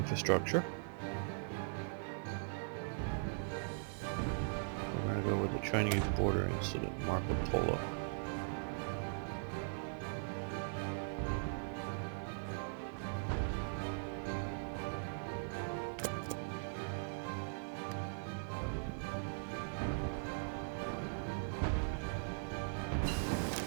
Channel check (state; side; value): silent; left; 51 dB below the other